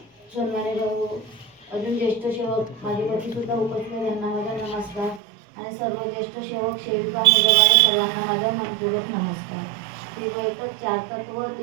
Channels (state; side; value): drops out; left; at 5.2 s